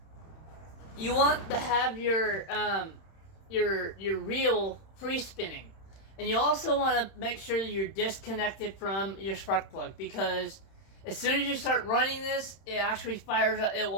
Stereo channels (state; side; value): late; right; 31 ms